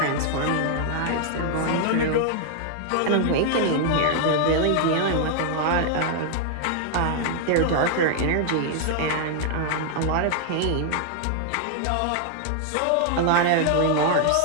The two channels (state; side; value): different; both; correlation 0.00